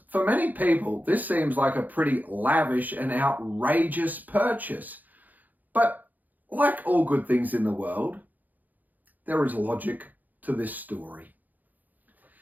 for many people, this seems like a pretty lavish and outrageous purchase. But like all good things in the world, there is logic to this story.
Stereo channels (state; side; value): late; left; 0.083 ms